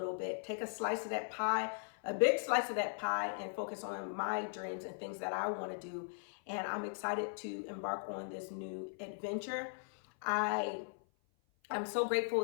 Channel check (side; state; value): right; silent; 52 dB below the other